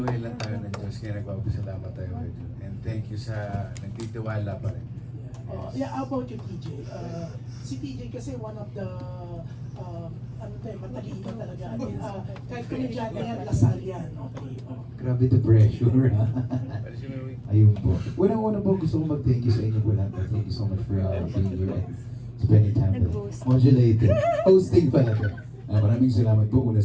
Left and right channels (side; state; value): both; identical; correlation 1.00